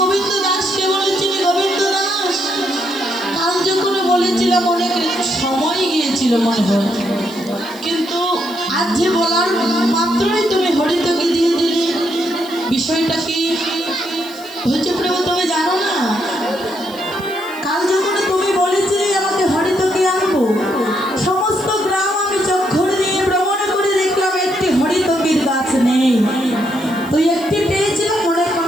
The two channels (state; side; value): noise; left; hiss, 20 dB below the sound